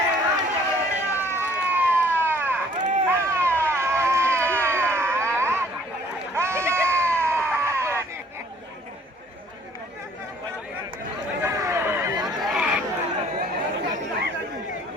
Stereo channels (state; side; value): normal; both; correlation 0.58